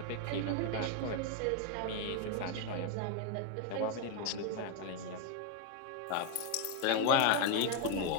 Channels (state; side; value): different; both; correlation 0.01